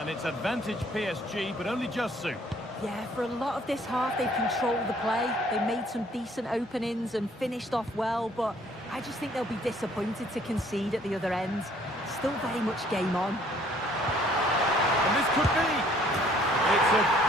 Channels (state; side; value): normal; both; correlation 0.60